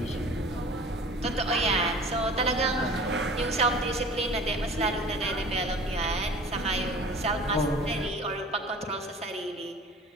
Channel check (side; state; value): both; normal; correlation 0.43